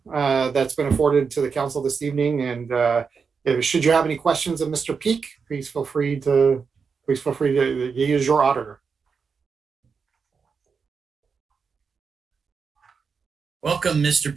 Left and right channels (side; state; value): left; quieter; 5.6 dB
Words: that's been afforded to the council this evening. And should you have any questions of Mr. Peak, please feel free to use your auditor. Welcome, Mr.